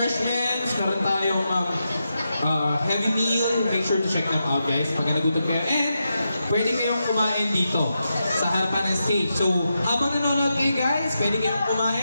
meron tayong heavy meal. Make sure to check them out guys, pagka nagutom kayo. And pwede kayong kumain dito sa harapan ng stage. So, habang nanonood kayo guys, pwede kayong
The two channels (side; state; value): both; inverted; correlation -0.87